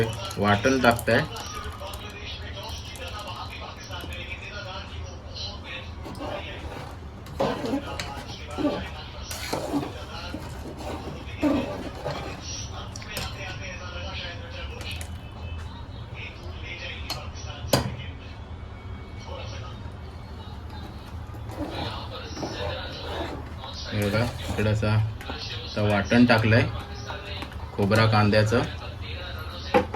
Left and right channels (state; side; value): identical; both; correlation 1.00